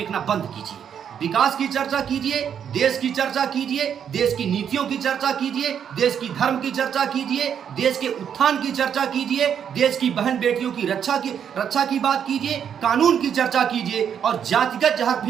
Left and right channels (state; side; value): quieter; left; 8.3 dB